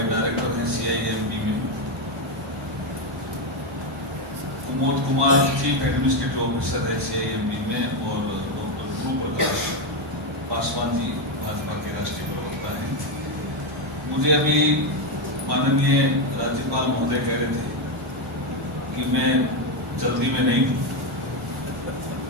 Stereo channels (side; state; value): both; normal; correlation 0.06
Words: director हैं CIMB में, Kumod Kumar chief administrative officer है CIMB में, और डॉक्टर ध्रुव प्रकाश पासवान जी भाजपा के राष्ट्रीय प्रवक्ता हैं। मुझे अभी माननीय राज्यपाल महोदय कह रहे थे कि मैं जल्दी में नहीं हूँ,